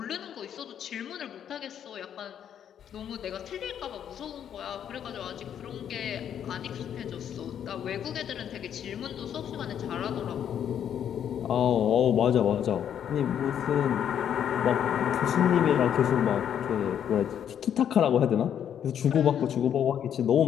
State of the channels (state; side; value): quieter; right; 9.2 dB